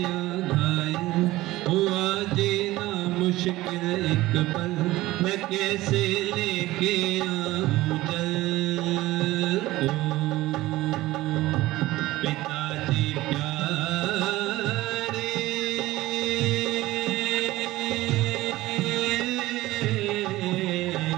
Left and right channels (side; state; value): left; quieter; 17.6 dB